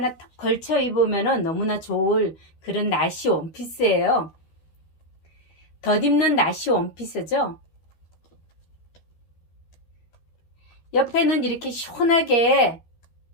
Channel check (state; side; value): late; right; 12 ms